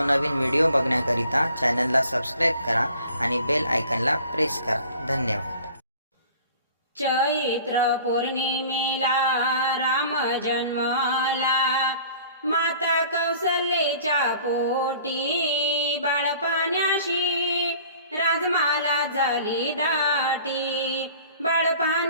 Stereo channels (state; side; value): inverted; both; correlation -0.49